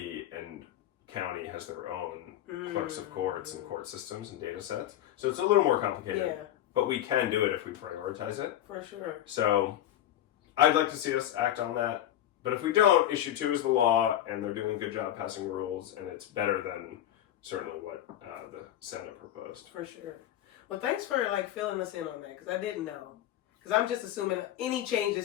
and county has their own clerks of courts and court systems and data sets. So it's a little more complicated. Yeah. But we can do it if we prioritize it. For sure. So I'd like to see us act on that. But if we don't, Issue 2 is the law, and they're doing a good job passing rules, and it's better than certainly what the Senate proposed. For sure. Well, thanks for filling us in on that, because I didn't know. Because I'm just assuming any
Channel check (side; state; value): right; quieter; 12.3 dB